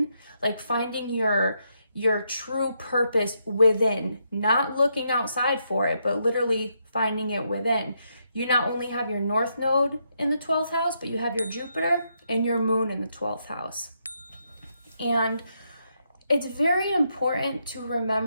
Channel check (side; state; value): both; inverted; correlation -0.79